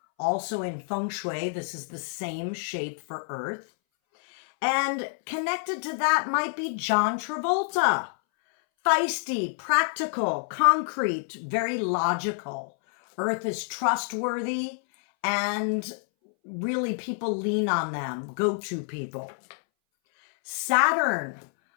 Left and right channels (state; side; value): silent; right; 60 dB below the other